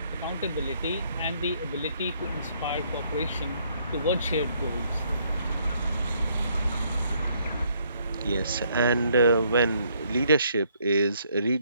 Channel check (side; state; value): both; inverted; correlation -0.68